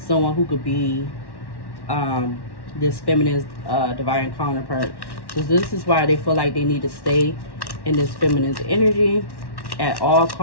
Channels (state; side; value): late; right; 1.1 ms